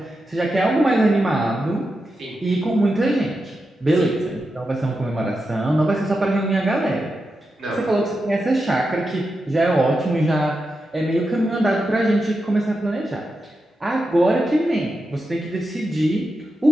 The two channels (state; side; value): normal; both; correlation 0.88